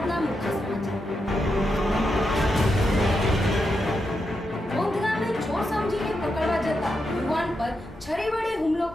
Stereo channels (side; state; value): both; normal; correlation 0.85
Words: મુખ્ય સમાચાર। વોંધ ગામે ચોર સમજીને પકડવા જતા યુવાન પર છરી વડે હુમલો